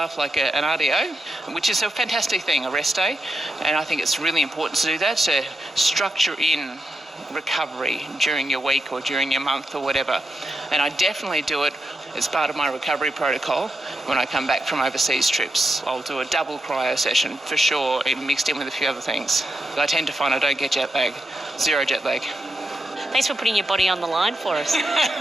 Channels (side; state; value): both; normal; correlation 0.86